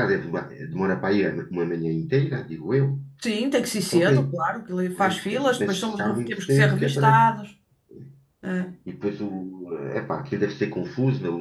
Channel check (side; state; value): both; identical; correlation 1.00